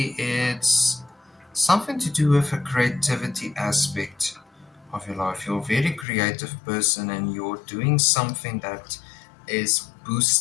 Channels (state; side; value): drops out; right; at 6.1 s